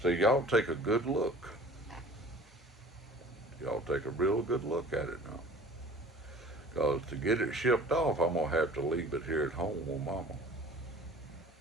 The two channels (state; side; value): normal; both; correlation 0.45